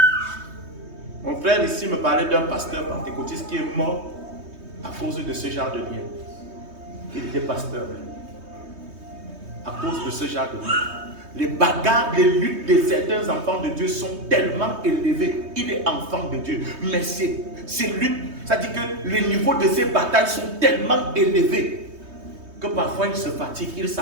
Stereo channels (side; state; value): left; late; 3.2 ms